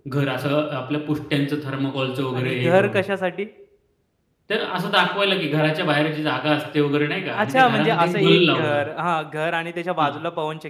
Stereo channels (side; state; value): both; identical; correlation 1.00